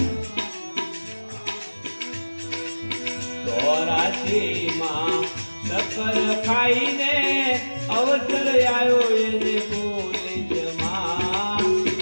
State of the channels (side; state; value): both; inverted; correlation -1.00